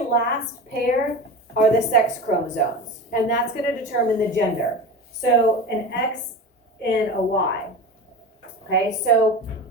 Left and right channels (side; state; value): both; normal; correlation 0.29